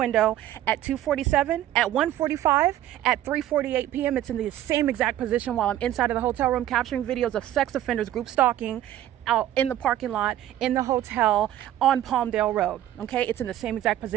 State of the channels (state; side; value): quieter; left; 12.7 dB